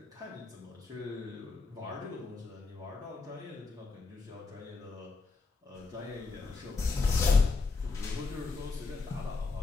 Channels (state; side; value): quieter; right; 4.1 dB